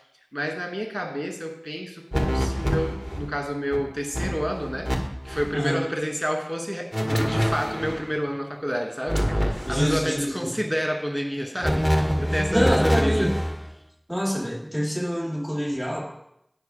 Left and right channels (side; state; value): both; identical; correlation 1.00